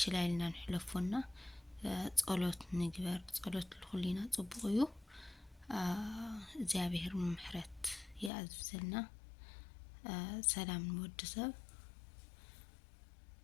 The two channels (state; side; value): drops out; right; at 8.3 s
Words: ችላይልና ንሕለፎና ጸሎት ንግበር ጸሎት ኩሊና ጽቡቅ እዩ እግዚአብሔር ምሕረት ያዝዘልና ሰላም ንወድሰብ